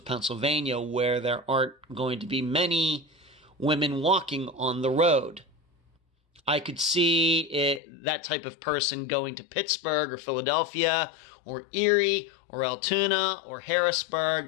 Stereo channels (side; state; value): right; drops out; at 7.8 s